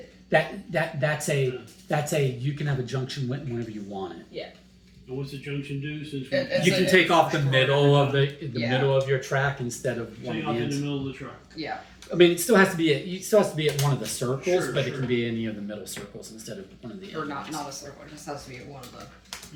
That's a you can have a junction whenever you want it. Yeah. And what's the junction do? Since we It's You can take off the middle of the Yeah. middle of your track instead of one take of off the in the ends. middle of the track. Yeah. I mean, it still has to be at one of the circles, Sure, but it sure. can be any of the middle circles instead of one of the Or end not ones. a circle. It just has to be one of the.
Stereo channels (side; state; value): both; identical; correlation 1.00